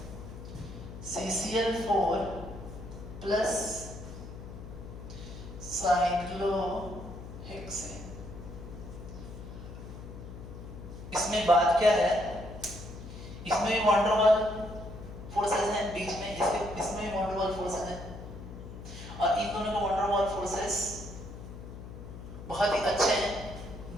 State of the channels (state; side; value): noise; left; hum, 12 dB below the sound